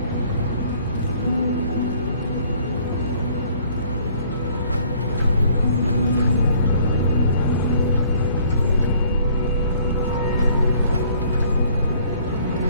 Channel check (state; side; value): inverted; both; correlation -0.59